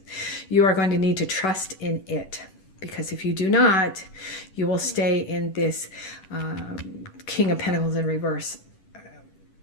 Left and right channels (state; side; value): late; right; 11 ms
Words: You are going to need to trust in it, because if you do not, you will stay in this King of Pentacles in reverse,